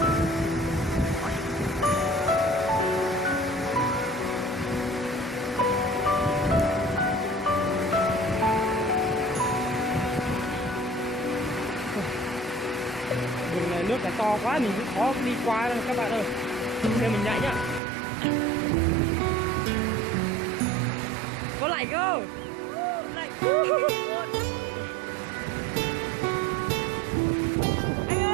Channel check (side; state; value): left; drops out; at 17.8 s